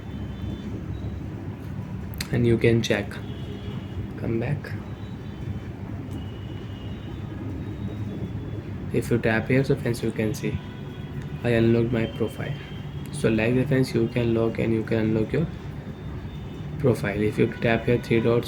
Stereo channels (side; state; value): both; identical; correlation 1.00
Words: and you can check. Come back. If you tap here, so friends, you can see I unlocked my profile. So like that friends, you can log and you can unlock your profile. If you tap here three dots,